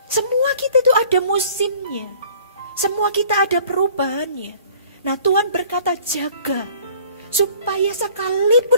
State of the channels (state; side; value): inverted; both; correlation -0.52